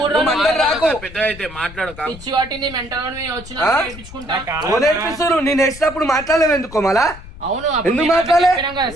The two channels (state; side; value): noise; left; rumble, 16 dB below the sound